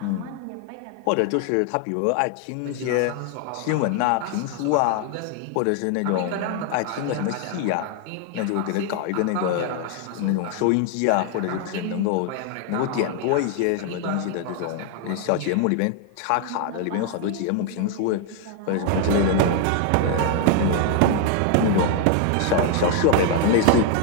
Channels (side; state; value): both; different; correlation 0.00